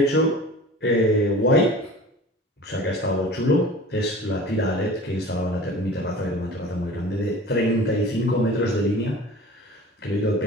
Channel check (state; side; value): normal; both; correlation 0.40